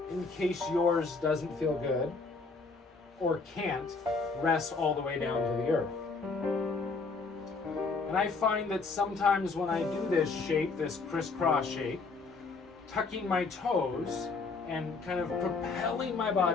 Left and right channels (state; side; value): quieter; right; 4.2 dB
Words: in case yours doesn't feel good, or can't rest all the way down to the earth. And I find that sometimes when I do this shape, this crisscross shape, tucking my toes and kind of propelling my